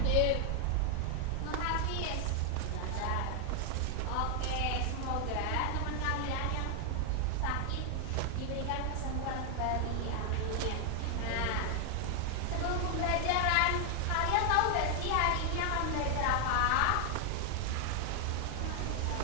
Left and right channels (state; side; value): different; both; correlation 0.00